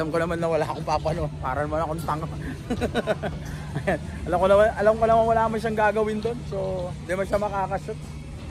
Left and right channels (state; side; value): identical; both; correlation 1.00